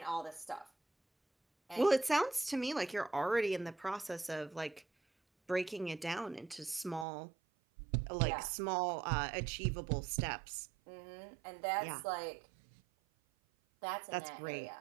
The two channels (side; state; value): left; drops out; at 7.1 s